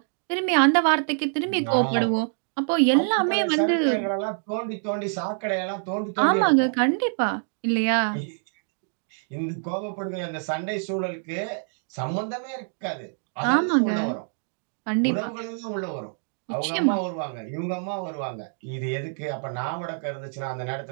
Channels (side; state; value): left; silent; 61 dB below the other